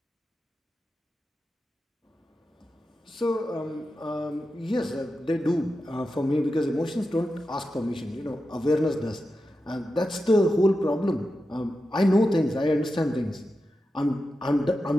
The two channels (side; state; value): both; normal; correlation 0.90